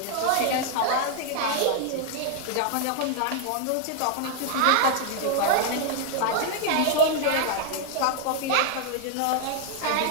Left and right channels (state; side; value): different; both; correlation 0.00